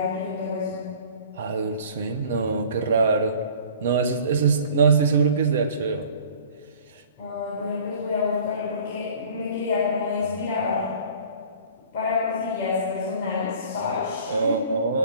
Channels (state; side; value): inverted; both; correlation -0.48